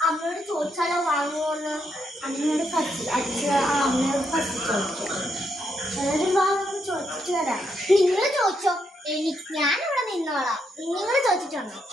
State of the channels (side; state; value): both; normal; correlation 0.78